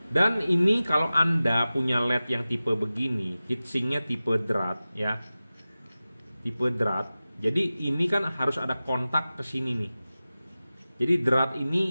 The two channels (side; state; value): both; inverted; correlation -0.96